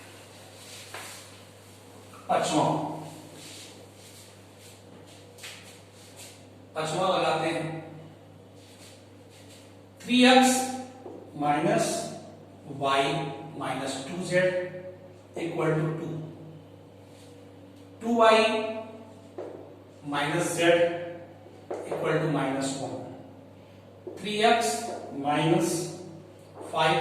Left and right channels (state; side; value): identical; both; correlation 1.00